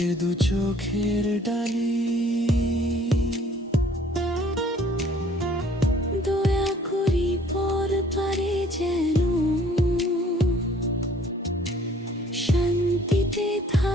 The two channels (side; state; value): both; normal; correlation 0.57